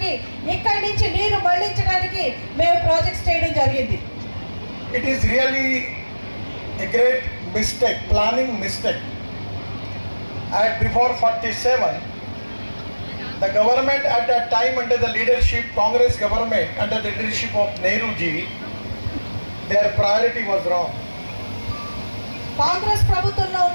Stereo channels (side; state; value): both; inverted; correlation -1.00